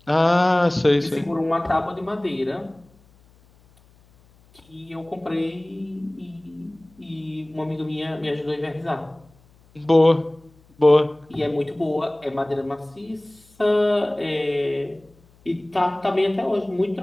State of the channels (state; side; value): noise; left; hum, 30 dB below the sound